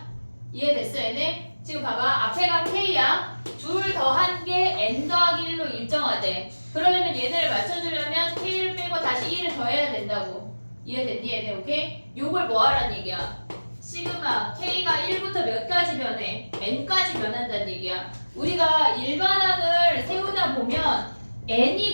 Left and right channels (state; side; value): inverted; both; correlation -1.00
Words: 이해됐어 얘네? 지금 봐봐. 앞에가 k야. 둘 더한 게 n 더하기 1로 일정하대. 그러려면 얘네를 맞춰주려면 k를 빼고 다시 1을 더해야 된다고. 이해됐니 얘네? 오케이? 요걸 뭐 하란 얘기야? 시그마 k가 1부터 몇 가지 변해? n까지 변한다는 얘기야. 우리가 일반항을 세우다 보면